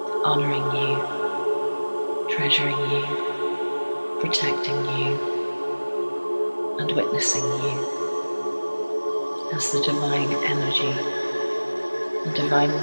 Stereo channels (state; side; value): inverted; both; correlation -1.00